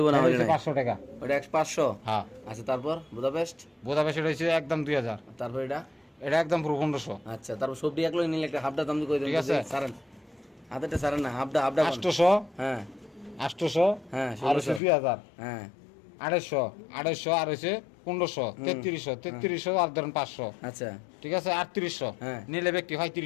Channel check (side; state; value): right; drops out; at 14.8 s